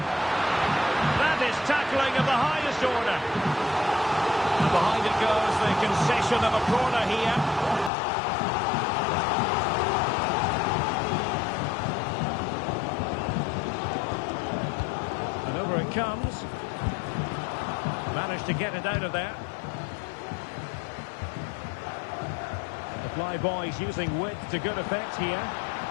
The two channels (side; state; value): right; drops out; at 7.9 s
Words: That is tackling of the highest order. And behind it goes the concession of a corner here. managed to get it out of there. The fly boys using width to good effect here,